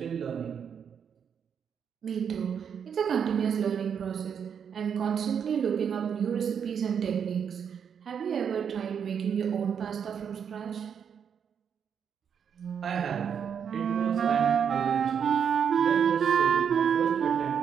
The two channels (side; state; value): left; quieter; 7.5 dB